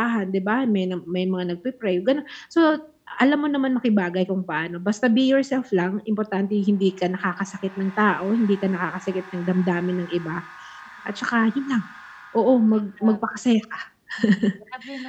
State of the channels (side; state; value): both; identical; correlation 1.00